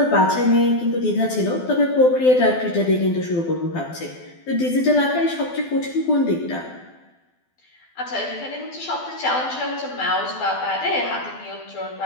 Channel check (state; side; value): late; right; 12 ms